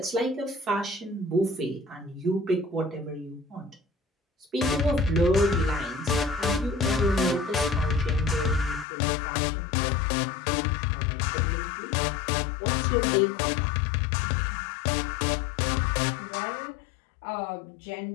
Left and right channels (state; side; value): drops out; right; at 8.8 s